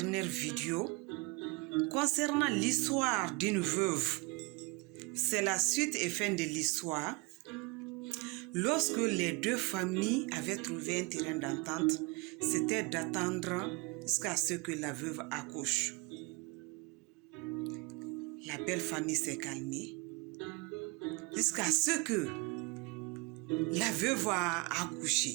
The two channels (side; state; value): left; quieter; 27.1 dB